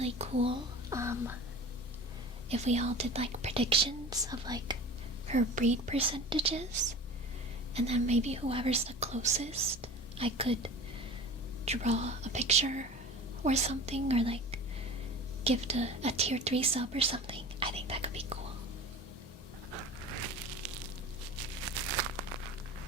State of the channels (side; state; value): both; normal; correlation 0.37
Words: cool if we all did like predictions of like her breed percentages, and then maybe whoever's the closest, I could draw a picture or something, or like give a tier 3 sub or something. I think that could be cool.